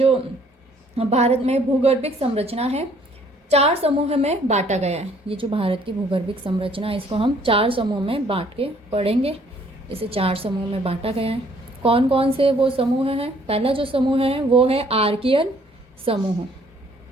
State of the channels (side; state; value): both; normal; correlation 0.61